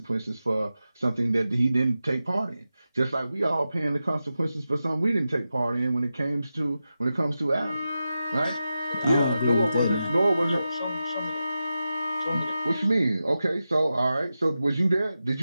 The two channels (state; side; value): inverted; both; correlation -0.92